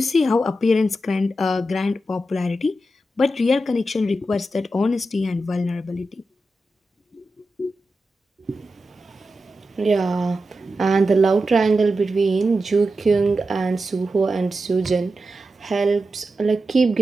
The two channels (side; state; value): both; normal; correlation 0.90